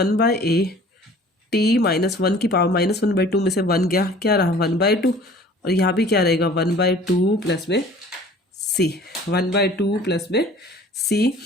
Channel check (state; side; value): normal; both; correlation 0.48